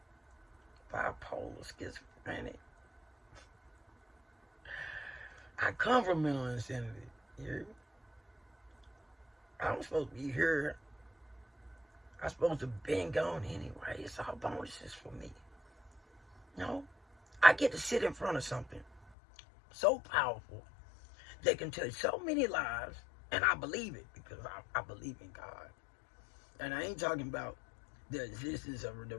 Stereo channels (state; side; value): drops out; right; at 19.1 s